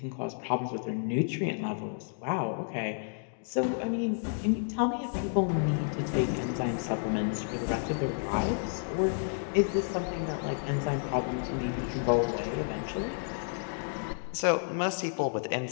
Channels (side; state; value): right; silent; digital silence